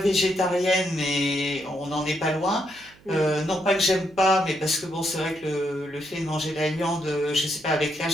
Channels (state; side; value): noise; right; hum, 27 dB below the sound